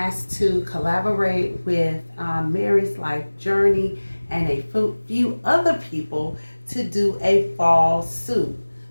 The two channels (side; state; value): both; inverted; correlation -1.00